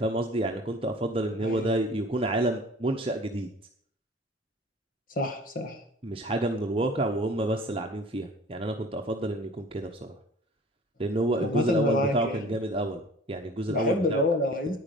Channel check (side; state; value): both; normal; correlation 0.46